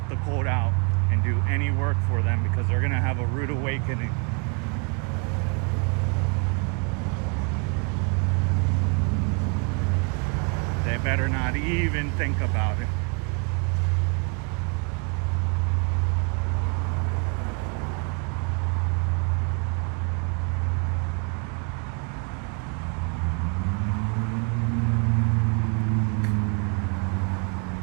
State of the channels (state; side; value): quieter; left; 34.3 dB